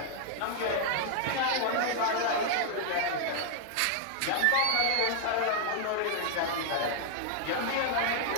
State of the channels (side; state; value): both; different; correlation 0.00